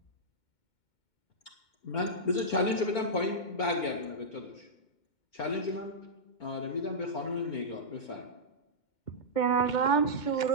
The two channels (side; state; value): right; late; 2.2 ms